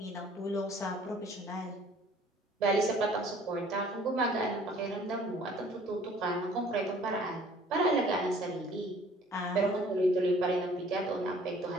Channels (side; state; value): both; normal; correlation 0.54